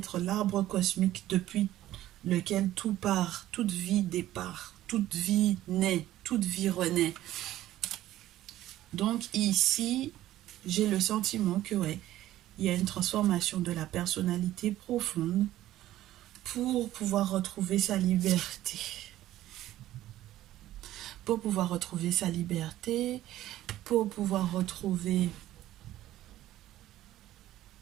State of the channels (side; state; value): left; quieter; 14.2 dB